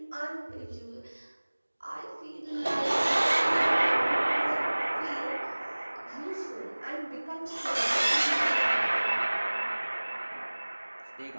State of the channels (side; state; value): both; inverted; correlation -1.00